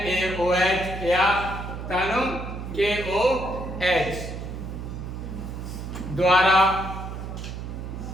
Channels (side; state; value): right; noise; hum, 7 dB below the sound